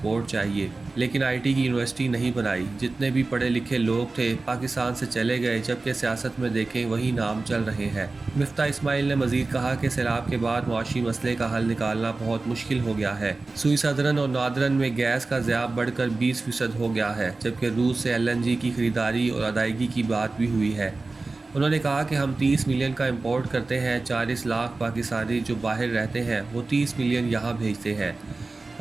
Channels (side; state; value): left; quieter; 3.5 dB